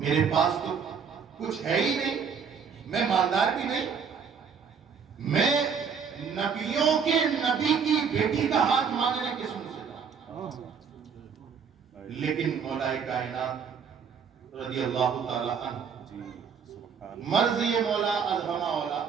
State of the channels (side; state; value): left; quieter; 6.5 dB